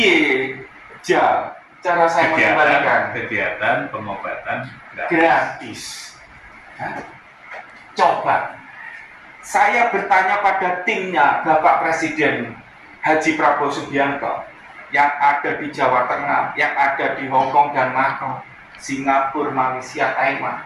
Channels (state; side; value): identical; both; correlation 1.00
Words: Cara saya mengembalikan kegiatan pengobatan gratis. Coba saya bertanya pada timnya Bapak Presiden Haji Prabowo Subianto yang ada di Jawa Tengah, yang ada di Hong Kong dan Macau, Singapura, Malaysia, Taiwan.